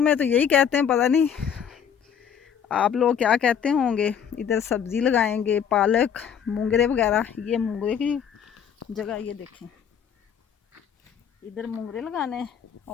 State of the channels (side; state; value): right; quieter; 8.0 dB